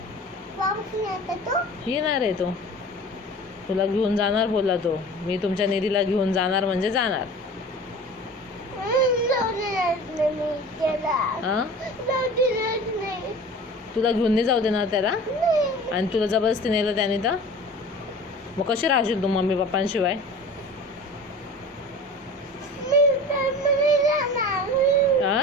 येणार आहे तो, तुला घेऊन जाणार बोलला तो. मी तुमच्या निधीला घेऊन जाणार म्हणजे जाणार. हा, तुला घेऊन नाही जाऊ देणार त्याला, आणि तुला जबरदस्ती नेलं त्याने तर मग कशी राहशील तू मम्मी पप्पांशिवाय? हा,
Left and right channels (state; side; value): normal; both; correlation 0.39